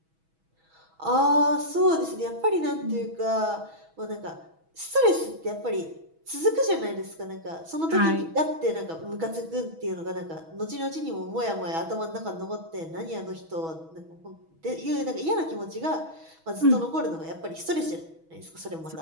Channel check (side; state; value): left; late; 6.2 ms